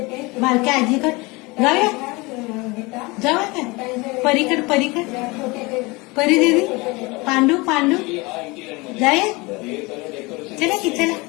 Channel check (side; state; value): right; quieter; 24.7 dB